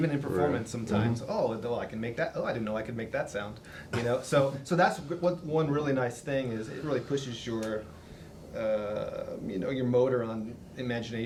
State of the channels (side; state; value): both; identical; correlation 1.00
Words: in performance sometimes. Oh, well, I can make that. Oh, I didn't know I could make that sound. You know, so that's what one really nice thing is. It really pushes your, you know, your motor on